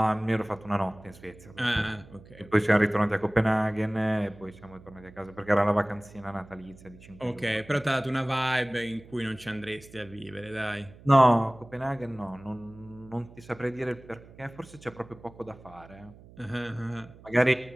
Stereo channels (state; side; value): noise; right; hum, 21 dB below the sound